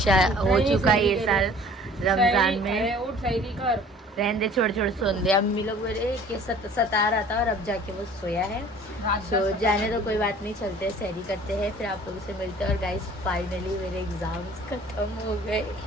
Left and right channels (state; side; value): normal; both; correlation 0.50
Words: हो चुका है ये साल रमजान में। रहने दे, छोड़ सोन दे। अम्मी लोग बोले कि सता रहा था, और अब जाके वो सोया है, तो जाने तो कोई बात नहीं, चलते हैं सहरी करते हैं, फिर आप लोगों से मिलते हैं। और गाइस, फाइनली मेरे एग्ज़ाम्स ख़त्म हो गए।